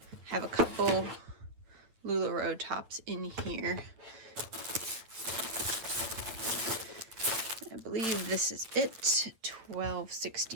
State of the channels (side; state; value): left; late; 9.4 ms